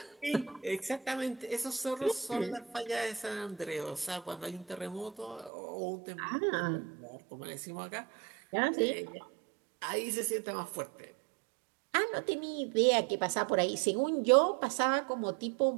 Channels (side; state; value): left; drops out; at 5.5 s